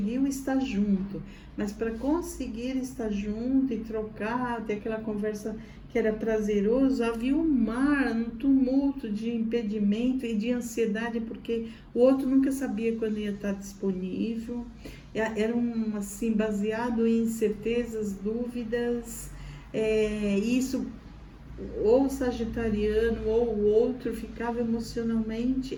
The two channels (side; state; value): both; identical; correlation 1.00